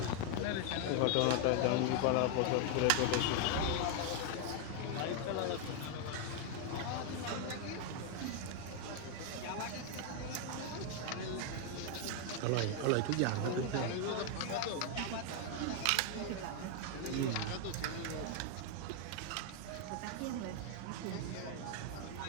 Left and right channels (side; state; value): both; different; correlation 0.00